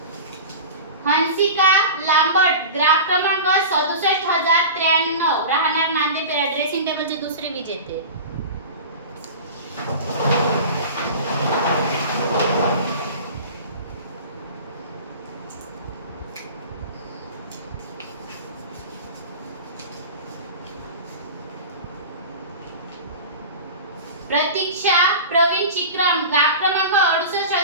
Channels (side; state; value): both; inverted; correlation -0.33